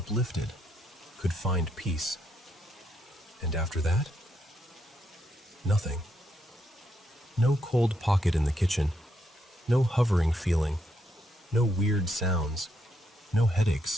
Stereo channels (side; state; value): both; normal; correlation 0.78